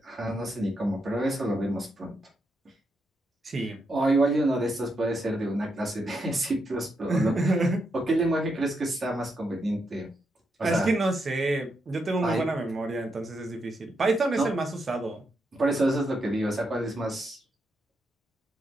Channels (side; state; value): both; normal; correlation 0.82